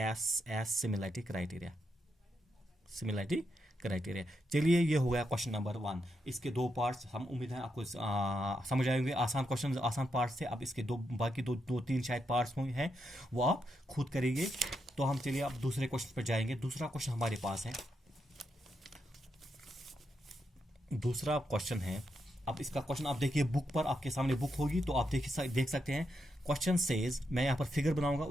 S similarity criteria, similarity criteria. चलिए ये हो गया क्वेश्चन नंबर 1। इसके 2 पार्ट्स, हम उम्मीद है आपको समझ आएंगे, आसान क्वेश्चन, आसान पार्ट्स थे। अब इसके बाकी दो तीन शायद पार्ट्स हैं वो आप खुद करेंगे। तो हम चलिए अब दूसरे क्वेश्चन पर जाएंगे। दूसरा क्वेश्चन हमारे पास है, दूसरा क्वेश्चन है। अब इसका क्वेश्चन आप देखिए, बुक पर आपके सामने बुक होगी तो आप देख सकते हैं। क्वेश्चन सेज, मैं यहाँ पर फिगर बनाऊंगा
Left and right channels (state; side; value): normal; both; correlation 0.83